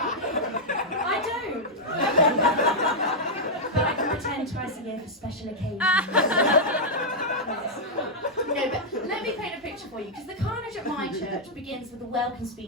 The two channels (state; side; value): normal; both; correlation -0.04